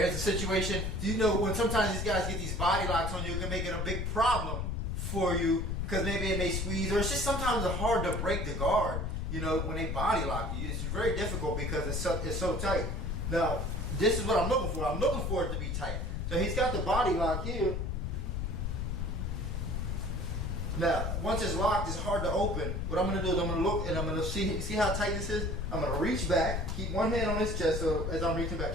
the situation. You know, when sometimes these guys get these body locks on you, it can make it a big problem for you because maybe it may squeeze, or it's just sometimes it's hard to break the guard. You know, when they body lock you, it's very difficult because it's so tight. Now, this is what I'm looking for. I'm looking for it to be tight. So he's got the body lock here. Now, once it's locked, it's hard to open. What I'm going to do is I'm going to look and I'm going to see how tight this is. I'm going to reach back, keep one hand on his chest so as I'm reaching back,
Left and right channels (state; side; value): noise; left; rumble, 1 dB below the sound